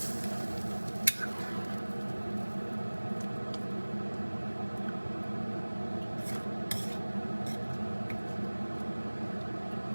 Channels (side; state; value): both; inverted; correlation -1.00